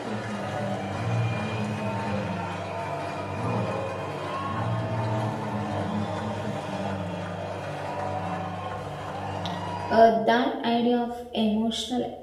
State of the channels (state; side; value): identical; both; correlation 1.00